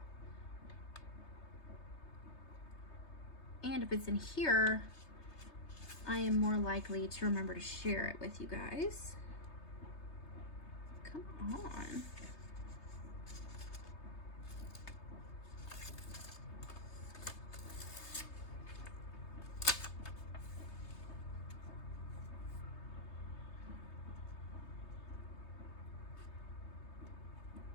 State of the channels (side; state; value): right; late; 3.3 ms